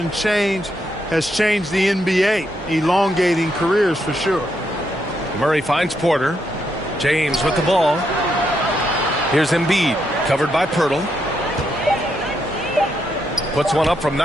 change has changed the NBA, elongating careers for sure. Murray finds Porter. James with the ball. Here's Embiid, covered by Pirtle. Puts one up from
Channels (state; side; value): normal; both; correlation 0.79